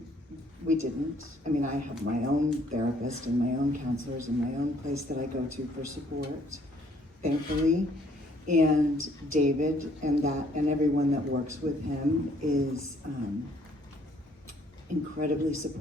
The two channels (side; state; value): both; normal; correlation 0.63